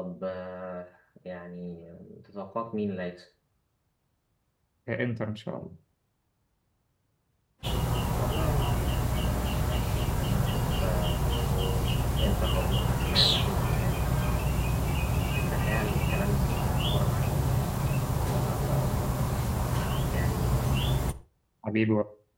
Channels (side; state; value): both; identical; correlation 1.00